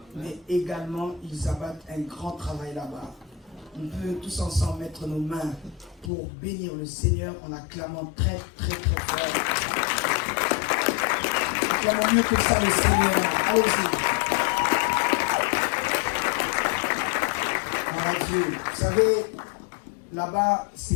mais également ils abattent un grand travail là-bas. On peut tous ensemble mettre nos mains pour bénir le Seigneur en acclamant très très très fort. Acclamons mieux que ça le Seigneur. Allez-y. Oh Dieu, vous savez, là-bas,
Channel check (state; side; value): drops out; right; at 6.1 s